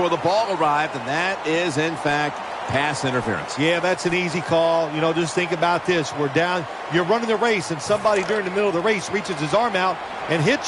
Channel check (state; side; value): identical; both; correlation 1.00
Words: the ball arrived, and that is, in fact, pass interference. Yeah, that's an easy call. You know, just think about this. We're down. You're running the race, and somebody during the middle of the race reaches his arm out and